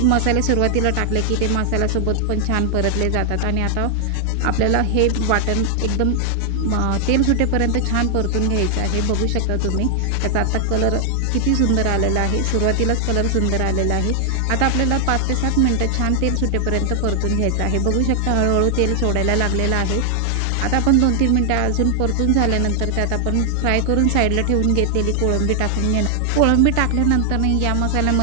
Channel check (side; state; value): both; different; correlation 0.00